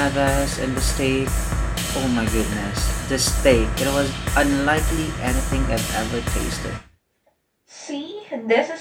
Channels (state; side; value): identical; both; correlation 1.00